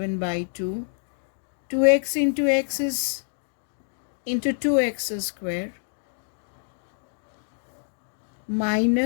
by 2. 2x into x is into 2x square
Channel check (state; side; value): silent; right; digital silence